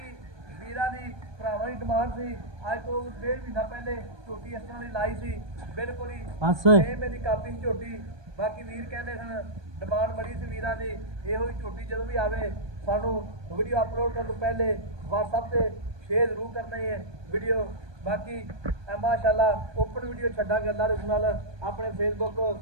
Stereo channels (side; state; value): left; late; 1.2 ms